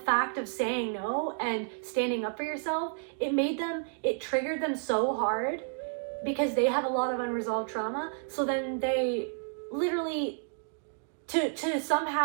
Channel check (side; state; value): left; silent; 57 dB below the other